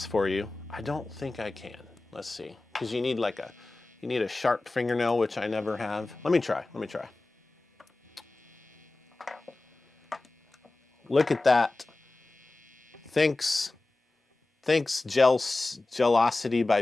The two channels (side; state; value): right; quieter; 3.1 dB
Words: for you. I don't think I can. Let's see, because you need a sharp fingernail, which I never have. Let me try. Look at that. Thanks, Gelosity by